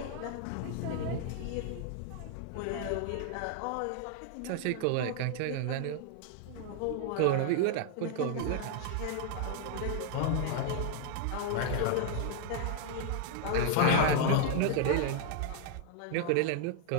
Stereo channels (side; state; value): both; different; correlation 0.00